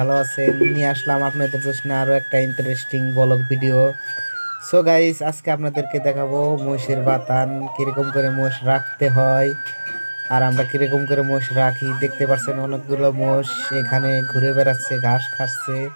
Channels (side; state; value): both; inverted; correlation -1.00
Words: আছেন। নিয়ে আসলাম আপনাদের জন্য আরো একটা interesting blog video. So guys, আজকে আপনাদেরকে দেখাবো মহিষের বাতান, কিরকম করে মোষ রাখতে হয় আর আমরা কিরকম করে মোষ রাখি। দেখতে পাচ্ছেন অনেকগুলো মোষ এখানে ঘুরে বেড়াচ্ছে, ঘাস খাচ্ছে।